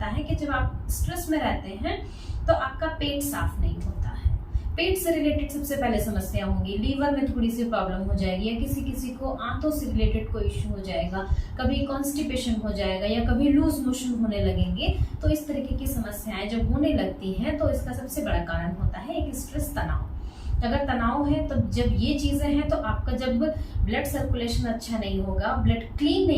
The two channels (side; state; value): both; identical; correlation 1.00